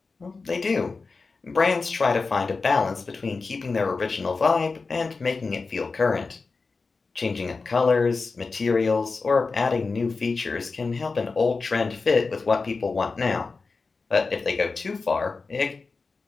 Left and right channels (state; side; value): quieter; right; 4.2 dB